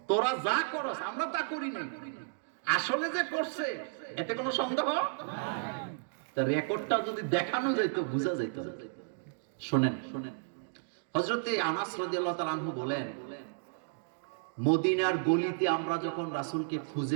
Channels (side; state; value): left; silent; digital silence